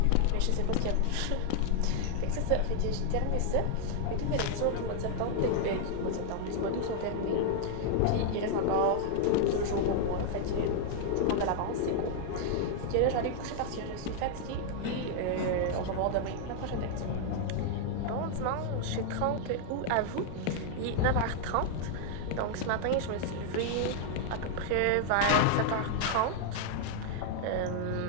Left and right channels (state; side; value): different; both; correlation 0.00